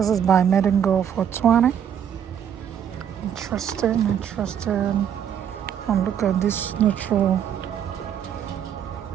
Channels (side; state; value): left; quieter; 8.9 dB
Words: is by Made and Go for $20. Interesting. And look at this neutral.